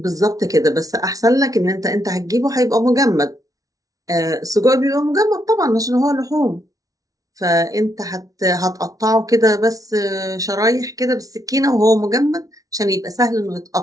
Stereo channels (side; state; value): left; late; 0.18 ms